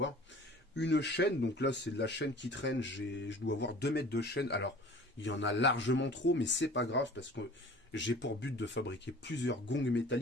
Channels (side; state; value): both; normal; correlation 0.45